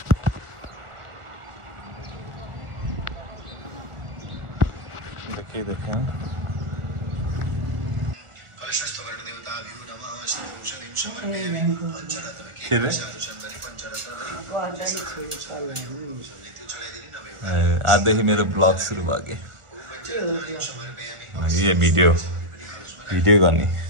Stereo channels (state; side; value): late; left; 1.4 ms